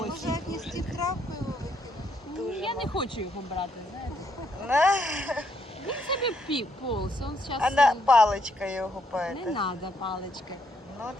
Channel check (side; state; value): both; normal; correlation 0.74